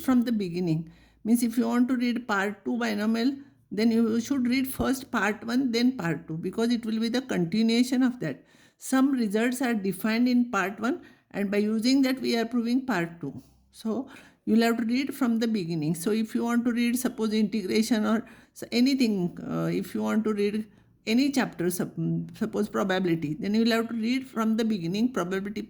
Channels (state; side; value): identical; both; correlation 1.00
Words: the beginning. Means if you want to read part 2 binomial, then you should read first part 1 then part 2, because it will be the continuation of that. Some results are defined in part 1, and by using that we are proving part 2. So you will have to read from the beginning. So if you want to read suppose integration or anything, if you want to read any chapter, suppose probability, then you will have to read from the beginning, probability